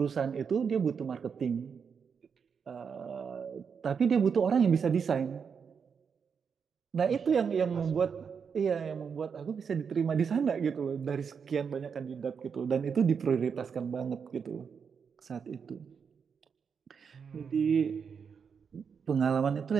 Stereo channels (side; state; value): left; quieter; 6.4 dB